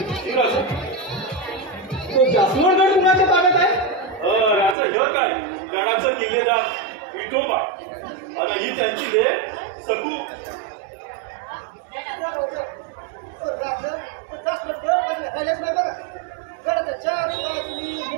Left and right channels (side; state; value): left; drops out; at 4.8 s